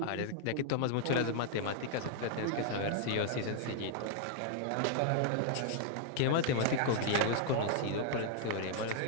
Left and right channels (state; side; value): different; both; correlation -0.01